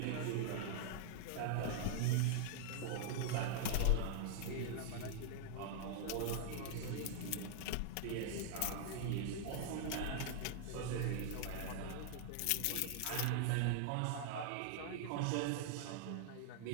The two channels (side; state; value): both; different; correlation 0.00